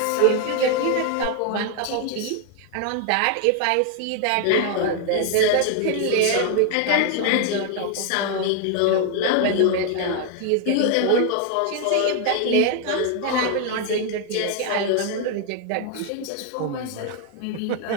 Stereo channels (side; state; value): both; different; correlation 0.00